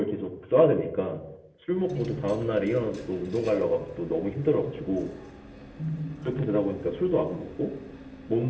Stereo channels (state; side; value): identical; both; correlation 1.00